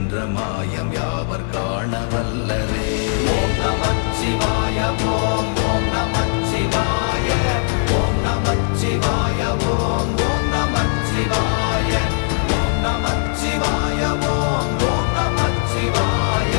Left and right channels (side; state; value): right; silent; digital silence